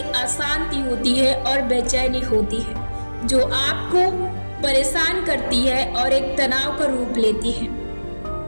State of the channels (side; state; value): both; inverted; correlation -1.00